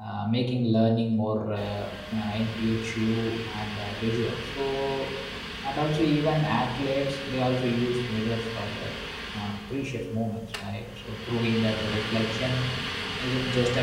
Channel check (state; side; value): identical; both; correlation 1.00